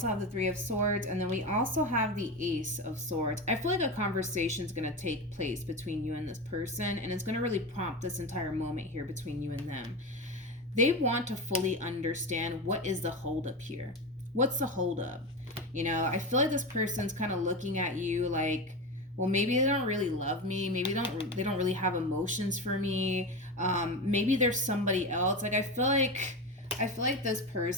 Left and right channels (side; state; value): both; normal; correlation 0.21